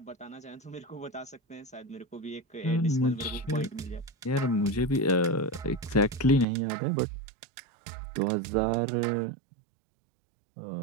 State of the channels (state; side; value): drops out; left; at 6.5 s